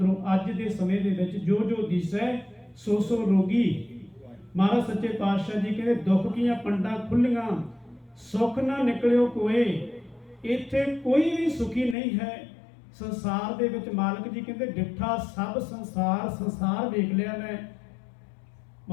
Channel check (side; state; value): right; drops out; at 12.0 s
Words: ਅੱਜ ਦੇ ਸਮੇਂ ਦੇ ਵਿੱਚ ਜੋ ਜੋ ਦਿਸੈ ਸੋ ਸੋ ਰੋਗੀ। ਮਹਾਰਾਜ ਸੱਚੇ ਪਾਤਸ਼ਾਹ ਜੀ ਕਹਿੰਦੇ ਦੁੱਖ ਕੀਆਂ ਪੰਡਾਂ ਖੁੱਲੀਆਂ, ਸੁੱਖ ਨਾ ਨਿਕਲਿਓ ਕੋਏ। ਇੱਥੇ ਕੋਈ ਵੀ ਸੁਖੀ ਨਹੀਂ ਹੈ ਸੰਸਾਰ ਦੇ ਵਿੱਚ। ਮਾਲਕ ਜੀ ਕਹਿੰਦੇ ਡਿੱਠਾ ਸਭ ਸੰਸਾਰ, ਸੰਸਾਰ ਵੇਖ ਲਿਆ ਮੈਂ।